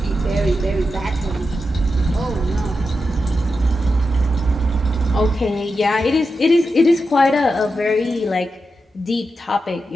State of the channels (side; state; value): both; normal; correlation 0.88